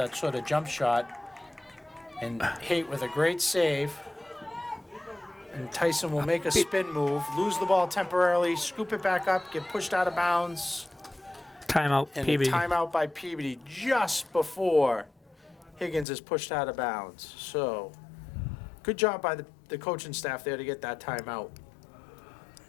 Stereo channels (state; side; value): drops out; right; at 16.1 s